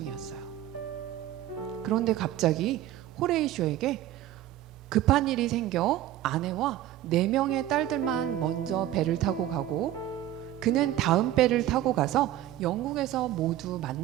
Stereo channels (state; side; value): quieter; left; 13.1 dB